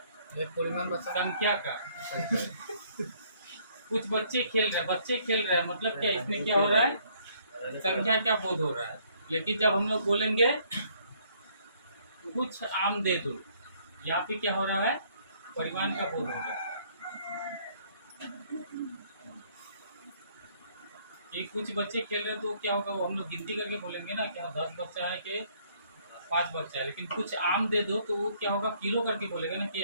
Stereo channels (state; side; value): inverted; both; correlation -0.64